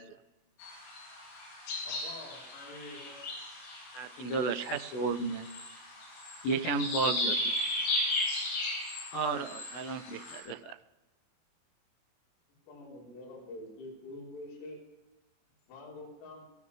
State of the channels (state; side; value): late; right; 24 ms